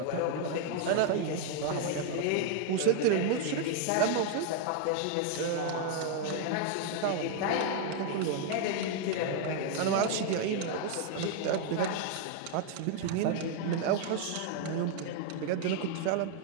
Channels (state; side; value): different; both; correlation 0.00